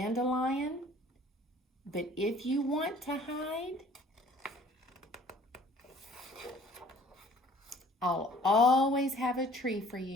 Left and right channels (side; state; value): both; normal; correlation 0.53